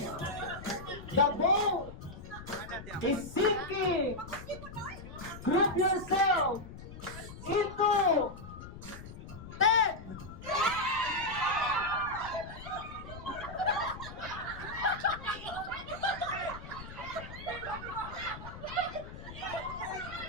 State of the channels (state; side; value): noise; left; rumble, 13 dB below the sound